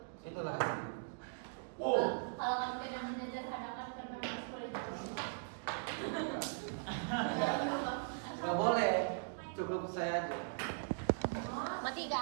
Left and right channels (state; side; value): silent; left; digital silence